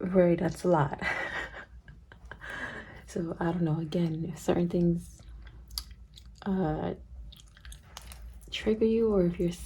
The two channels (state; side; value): identical; both; correlation 1.00